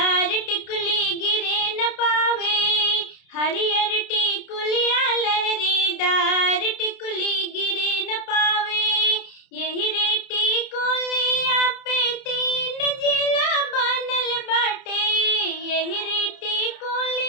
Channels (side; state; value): right; late; 30 ms